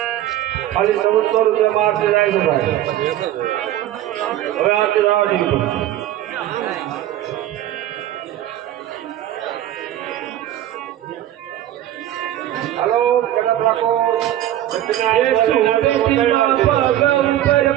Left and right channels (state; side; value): quieter; left; 12.8 dB